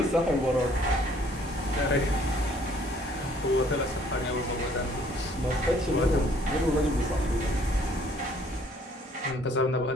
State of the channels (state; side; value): normal; both; correlation 0.60